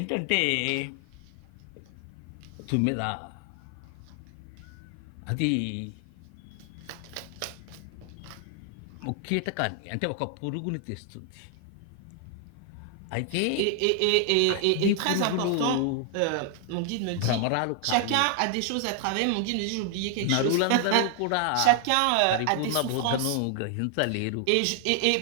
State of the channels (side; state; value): both; different; correlation 0.00